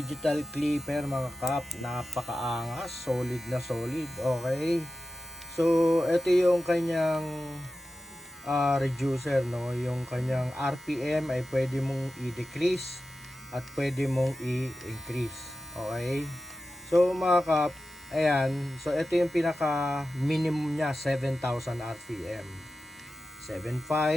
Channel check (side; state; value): both; normal; correlation 0.93